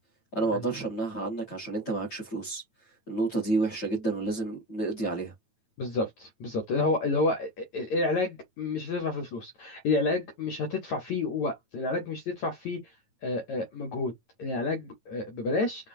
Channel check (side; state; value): right; late; 9.0 ms